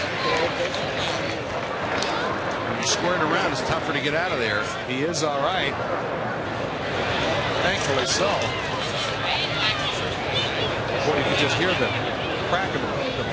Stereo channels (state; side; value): identical; both; correlation 1.00